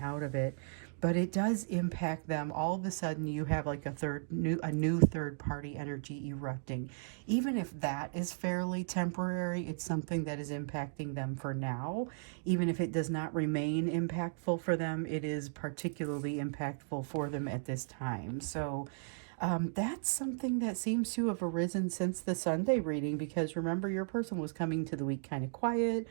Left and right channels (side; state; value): left; silent; digital silence